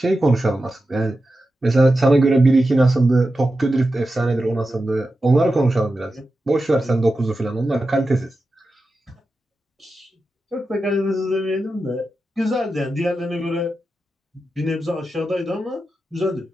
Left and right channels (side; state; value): both; normal; correlation 0.91